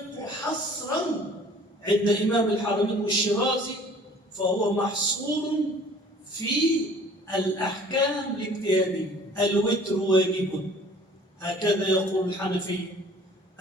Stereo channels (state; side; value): normal; both; correlation 0.51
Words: حصرا عند إمام الحرمين والشيرازي فهو محصور في الأحكام الاجتهادية. الوتر واجب، هكذا يقول الحنفي.